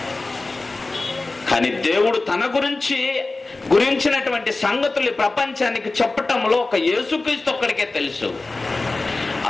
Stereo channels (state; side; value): quieter; right; 3.3 dB